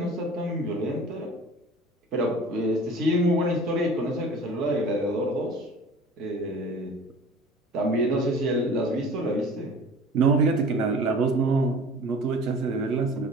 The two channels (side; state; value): both; normal; correlation 0.43